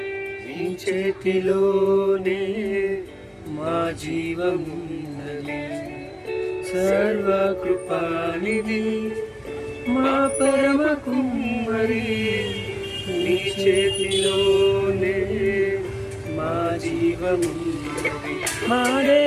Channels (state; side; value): identical; both; correlation 1.00